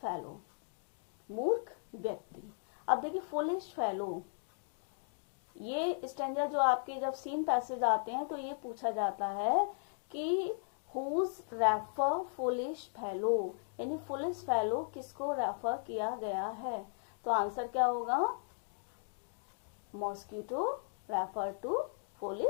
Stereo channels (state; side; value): silent; right; digital silence